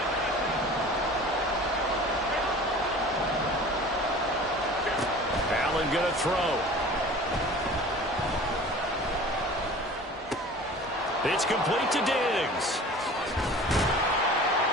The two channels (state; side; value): normal; both; correlation 0.42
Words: Allen going to throw. It's complete to Diggs.